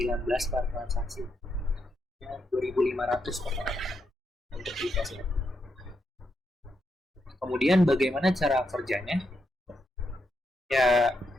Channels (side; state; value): both; normal; correlation 0.82